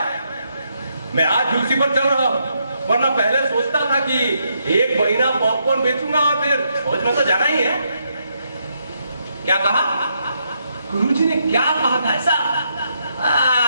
मैं आज उसी पर चल रहा हूँ, वरना पहले सोचता था कि 1 महीना पॉपकॉर्न बेचूंगा और फिर फौज में तो जाना ही है। क्या कहा गुरुजी ने? क्या कहा था ऐसा?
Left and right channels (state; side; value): inverted; both; correlation -0.78